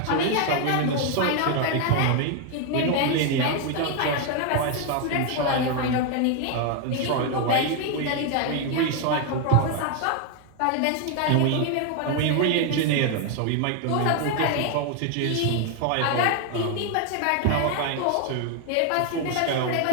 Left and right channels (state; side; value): different; both; correlation 0.01